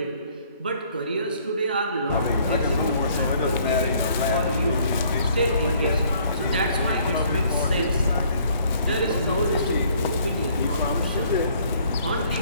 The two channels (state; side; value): inverted; both; correlation -0.61